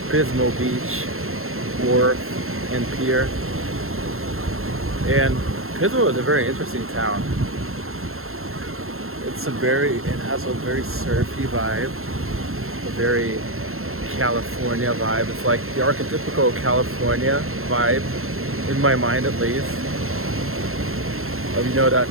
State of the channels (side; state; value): left; late; 0.62 ms